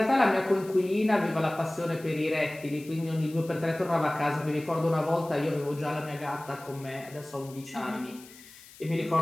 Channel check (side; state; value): left; noise; hiss, 21 dB below the sound